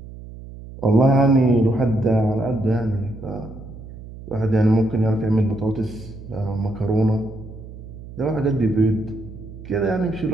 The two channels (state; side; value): noise; right; hum, 15 dB below the sound